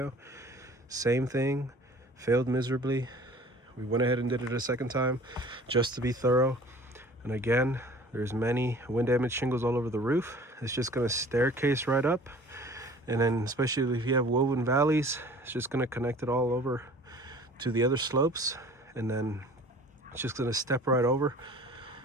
Same thing, failed miserably. We went ahead and did it a second time just to be thorough. And again, there's many wind damaged shingles all over the roof. It's just going to staircase right up. And then especially if you have woven valleys, it's just going to connect it all over to the other slopes. And then it's just going to step right over.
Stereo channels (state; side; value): normal; both; correlation 0.47